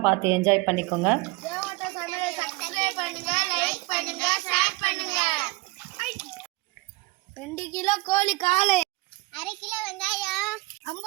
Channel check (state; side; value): quieter; left; 22.3 dB